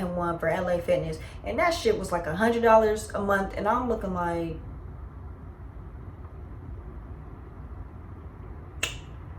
one for LA Fitness, and that shit was like $100 a month. And I'm looking like,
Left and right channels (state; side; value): identical; both; correlation 1.00